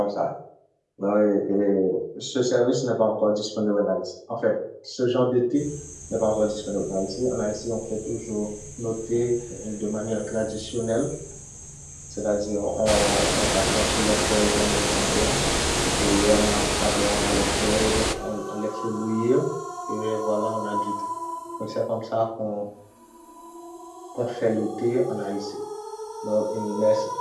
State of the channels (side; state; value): both; identical; correlation 1.00